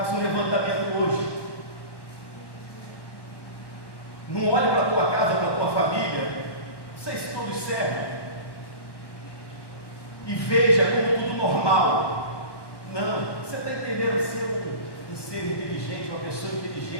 um levantamento hoje. Não olhe para a tua casa, para a tua família, não sei se todos servem, e veja como tudo normal. Não, você está entendendo? Ser um ser inteligente, uma pessoa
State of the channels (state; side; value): late; right; 1.1 ms